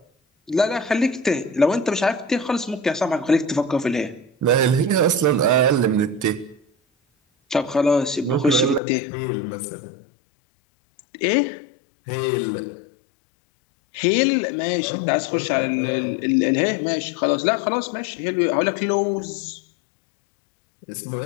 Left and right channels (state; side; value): drops out; right; at 8.8 s